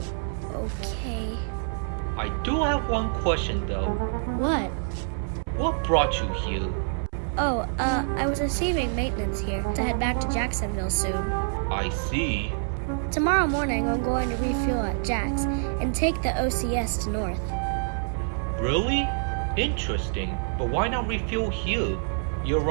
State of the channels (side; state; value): left; silent; 59 dB below the other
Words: okay. I do have one question though. What? What brought you here? Oh, I was receiving maintenance here to head back to Jacksonville soon. I see. Tomorrow morning, I'm going to refuel at Jack's and take the OCS to North. Really? Interesting. But why not refuel here? You're